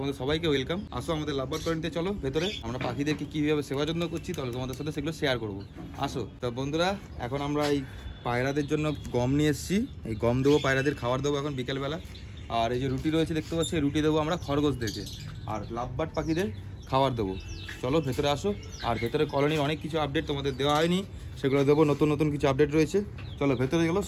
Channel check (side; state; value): both; identical; correlation 1.00